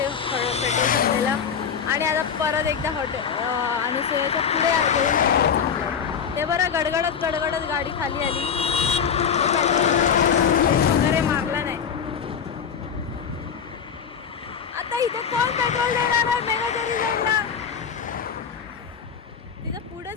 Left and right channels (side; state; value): right; quieter; 7.1 dB